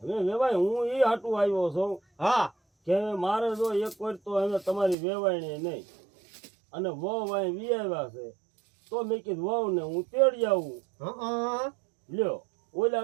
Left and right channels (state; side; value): drops out; left; at 5.0 s